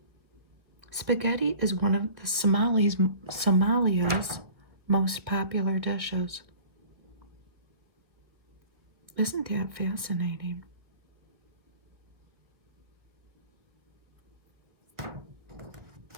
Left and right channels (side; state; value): left; late; 1.3 ms